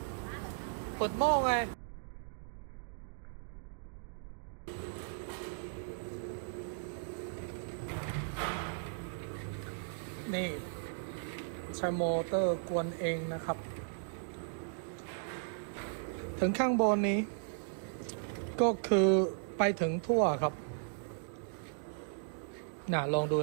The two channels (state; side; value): silent; left; digital silence